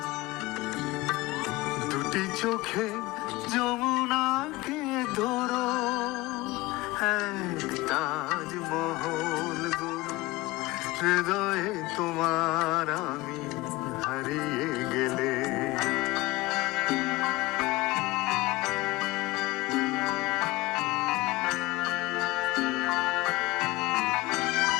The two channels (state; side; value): quieter; right; 20.0 dB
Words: দুটি চোখে যমুনাকে ধরো, তাজমহল গড়ো হৃদয়ে তোমার, আমি হারিয়ে গেলে।